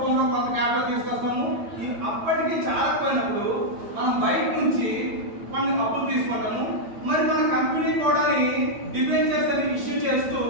కొంత క్యాపిటల్ తీసుకొస్తాము. ఈ అప్పటికి చాలకపోయినప్పుడు మనం బయట నుంచి కొన్ని అప్పులు తీసుకుంటాము. మరి మన కంపెనీ కూడా డిబెంచర్స్ అని ఇష్యూ చేస్తూ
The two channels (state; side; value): late; left; 8.9 ms